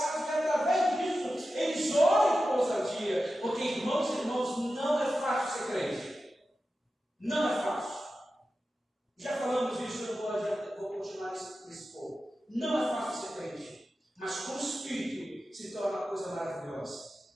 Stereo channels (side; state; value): both; normal; correlation 0.92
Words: dia. Porque, irmãos e irmãos, não é fácil ser crente. Não é fácil. Já falamos isso, eu vou continuar nesse ponto. Não é fácil ser crente. Mas com o Espírito se torna uma coisa maravilhosa.